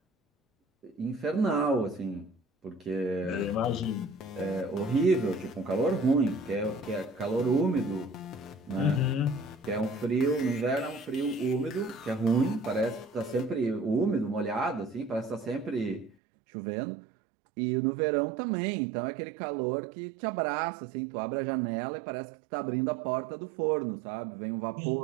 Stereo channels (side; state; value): left; drops out; at 16.2 s